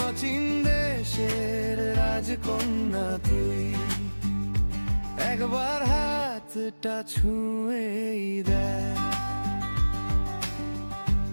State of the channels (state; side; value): inverted; both; correlation -1.00